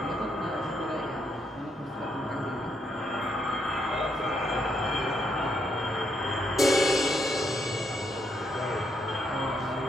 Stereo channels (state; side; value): normal; both; correlation 0.77